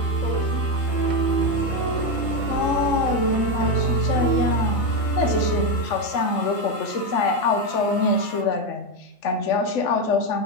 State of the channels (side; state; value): right; late; 3.2 ms